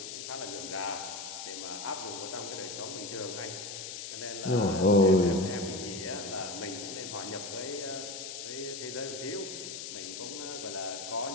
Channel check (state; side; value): noise; left; hiss, 7 dB below the sound